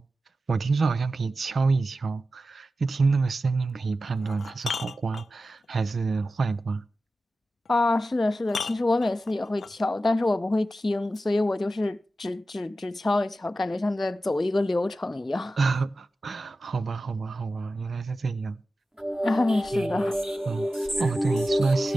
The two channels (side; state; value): both; normal; correlation 0.93